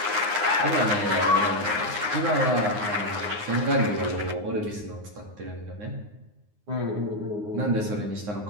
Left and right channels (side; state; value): left; late; 9.6 ms